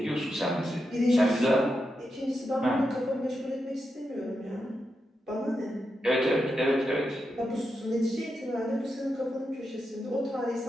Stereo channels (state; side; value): normal; both; correlation 0.87